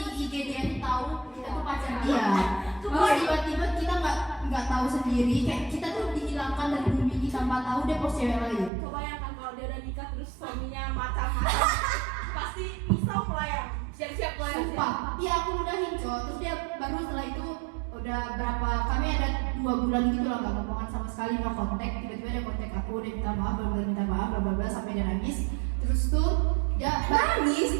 IGDN tahu kita tuh pacar dia. Terus tiba-tiba kita nggak tahu sendiri, kayak kita tuh dihilangkan dari bumi ini tanpa tahu dia post cewek lain. kebayangkan kalau dia udah nikah terus suaminya macam pasti pisau melayang. Siap-siap melayang. Sumpah, iya aku udahin Cok. Terus dia baru setelah itu udah berapa, kami ada 2 bulan gitu lah nggak ngomongan sama sekali, no kontak. Tiba-tiba dia kontak aku, dia minta maaf, minta maaf, bla bla bla sampai dia nangis. Terus tuh dia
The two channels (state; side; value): drops out; left; at 8.7 s